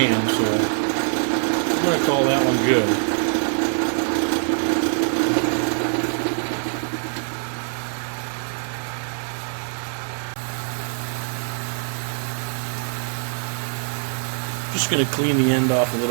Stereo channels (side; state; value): left; silent; 57 dB below the other